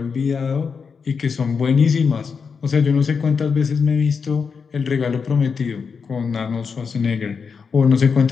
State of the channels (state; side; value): quieter; right; 5.7 dB